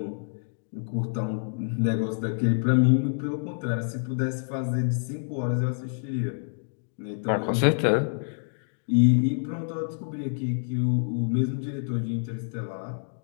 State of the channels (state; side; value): silent; right; digital silence